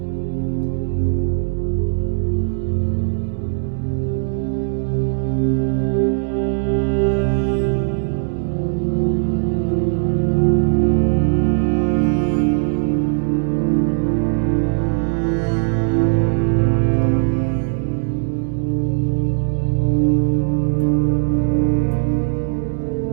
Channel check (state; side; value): silent; left; digital silence